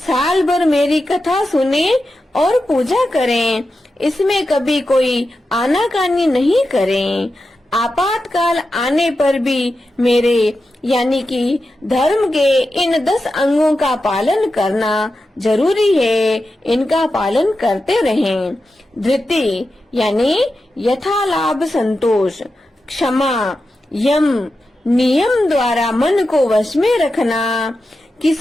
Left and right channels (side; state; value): both; normal; correlation 0.90